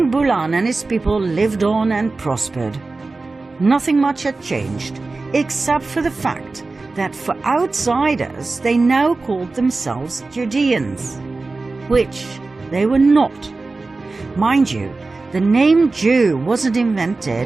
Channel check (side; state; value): left; quieter; 3.6 dB